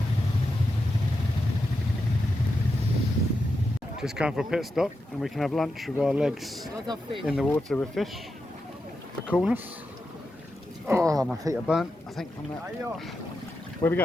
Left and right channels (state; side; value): normal; both; correlation 0.88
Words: Just come for a pit stop and we can have lunch with our legs in the water with fish for coolness. Oh, my feet are burnt, I think, from that. Where are we